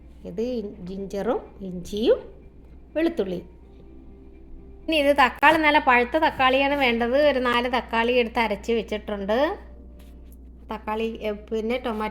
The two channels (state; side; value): identical; both; correlation 1.00